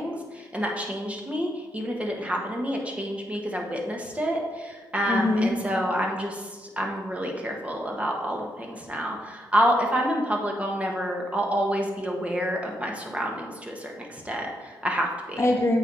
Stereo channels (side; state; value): both; normal; correlation 0.80